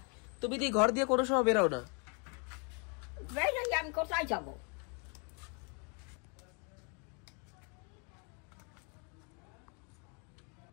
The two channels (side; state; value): right; quieter; 35.9 dB